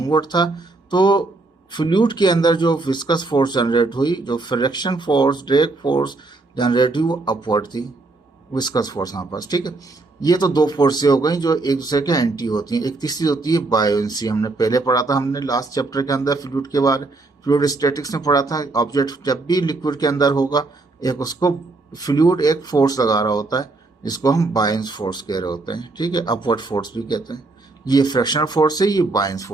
था तो फ्लूइड के अंदर जो विस्कस फोर्स जनरेट हुई, जो friction force drag force generate हुई वो अपवर्ड थी, विस्कस फोर्स हमारे पास। ठीक है, ये तो दो फोर्सें हो गई जो एक दूसरे के एंटी होती हैं। एक तीसरी होती है बायोंसी। हमने पहले पढ़ा था, हमने लास्ट चैप्टर के अंदर फ्लूइड के बारे फ्लूइड स्टैटिक्स में पढ़ा था। ऑब्जेक्ट जब भी लिक्विड के अंदर होगा एक उसको फ्लूइड एक फोर्स लगा रहा होता है जिसको हम बायंस फोर्स कह रहे होते हैं। ठीक है, अपवर्ड फोर्स भी कहते हैं। ये फ्रिक्शनल फोर्स है, ये बायंस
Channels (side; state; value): left; quieter; 3.4 dB